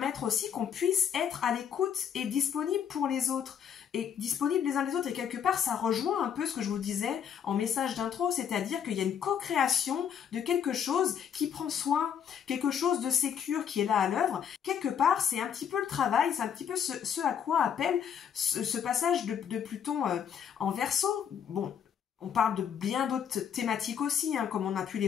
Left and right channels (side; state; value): right; quieter; 8.2 dB